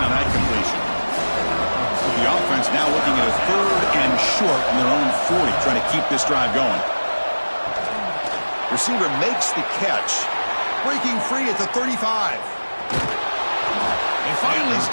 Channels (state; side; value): inverted; both; correlation -1.00